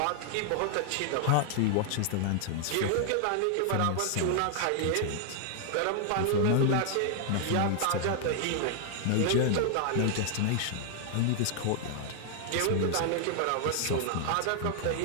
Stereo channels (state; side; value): different; both; correlation 0.00